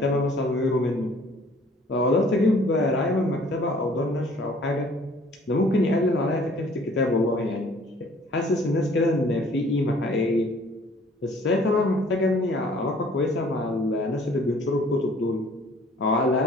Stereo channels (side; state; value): both; normal; correlation 0.55